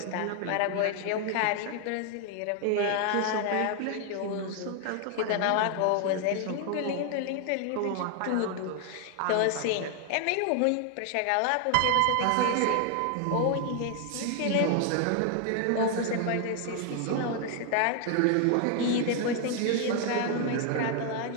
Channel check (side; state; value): both; different; correlation 0.00